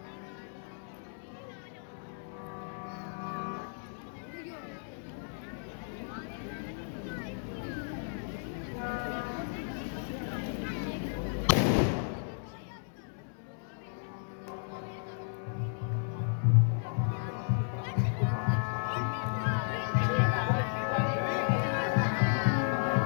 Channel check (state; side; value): silent; right; 55 dB below the other